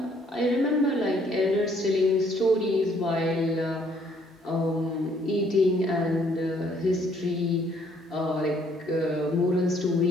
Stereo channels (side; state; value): both; normal; correlation 0.64